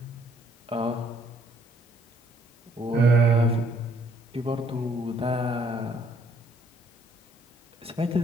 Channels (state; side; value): normal; both; correlation 0.65